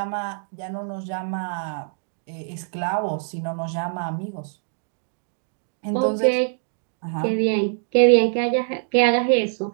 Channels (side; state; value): left; silent; digital silence